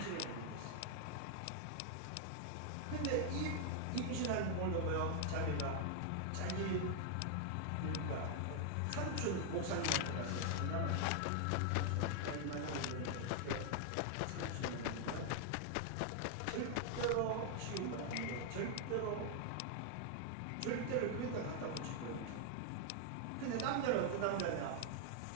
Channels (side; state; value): both; different; correlation 0.00